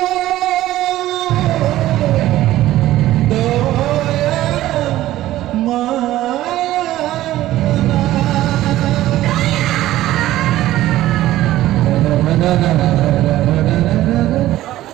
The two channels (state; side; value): quieter; left; 14.8 dB